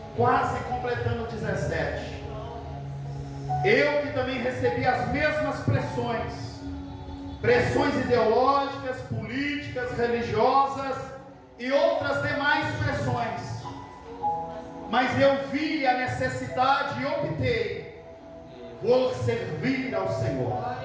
quase completando 17, eu que também recebi as mesmas pressões ideológicas, políticas, religiosas e outras demais pressões, mas eu vi a necessidade e optei por servir ao Senhor.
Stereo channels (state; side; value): identical; both; correlation 1.00